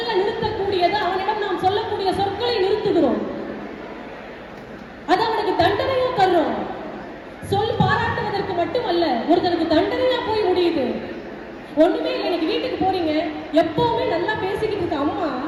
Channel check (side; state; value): both; identical; correlation 1.00